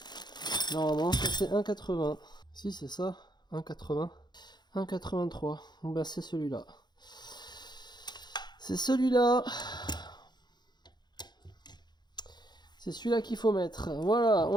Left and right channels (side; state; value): right; late; 0.21 ms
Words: Normalement, ça c'est 1,80. Si, c'est ça. 1,80. 1,83. Bah, c'est celui-là. C'est celui-là. C'est celui-là qu'il faut mettre. Voilà,